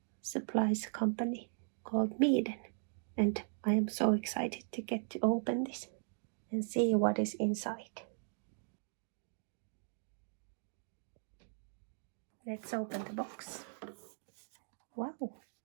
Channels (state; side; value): silent; left; digital silence